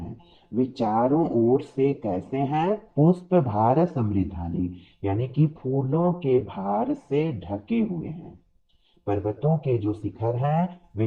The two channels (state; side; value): identical; both; correlation 1.00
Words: वे चारों ओर से कैसे हैं? पुष्प भार समृद्धानी, यानी कि फूलों के भार से ढके हुए हैं। पर्वतों के जो शिखर हैं